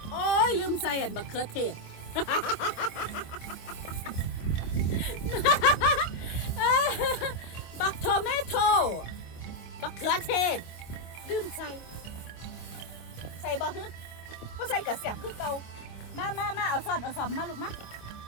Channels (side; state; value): right; late; 25 ms